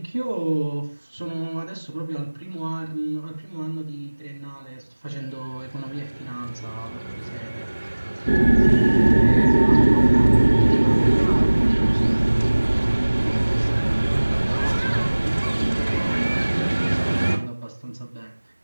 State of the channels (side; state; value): both; inverted; correlation -1.00